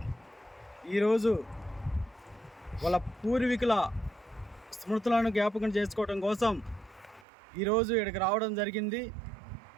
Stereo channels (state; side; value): drops out; left; at 7.2 s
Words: ఈరోజు వాళ్ళ పూర్వీకుల స్మృతులను జ్ఞాపకం చేసుకోవడం కోసం ఈరోజు ఇక్కడికి రావడం జరిగింది.